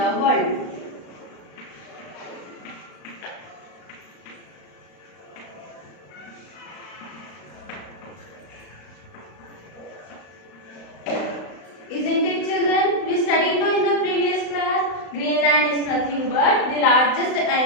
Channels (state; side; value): late; right; 35 ms